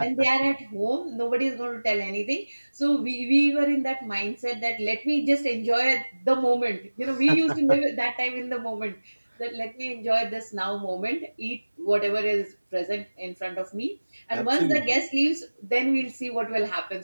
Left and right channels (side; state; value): both; inverted; correlation -1.00